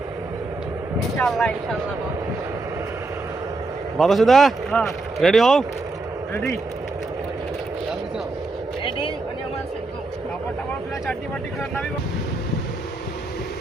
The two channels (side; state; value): left; quieter; 3.2 dB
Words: ইনশাআল্লাহ ইনশাআল্লাহ বাতাসুদা? হ্যাঁ রেডি হও। রেডি রেডি মানে আমার কাপড়টা পুরো চাটনি পাটি করে নামি।